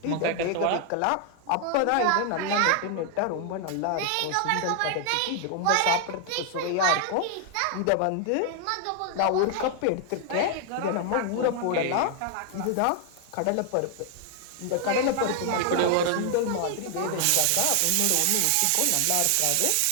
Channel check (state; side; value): different; both; correlation 0.00